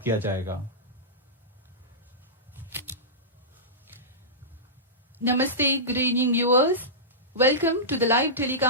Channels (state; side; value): normal; both; correlation -0.16